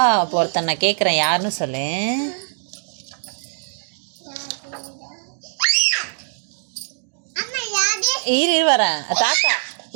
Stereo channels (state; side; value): silent; left; digital silence